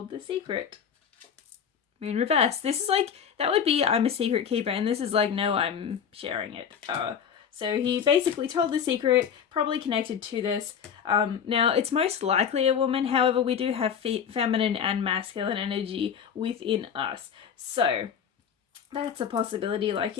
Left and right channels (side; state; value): right; quieter; 7.7 dB